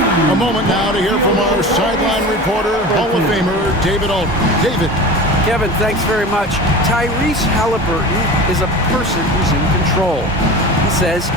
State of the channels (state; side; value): normal; both; correlation 0.34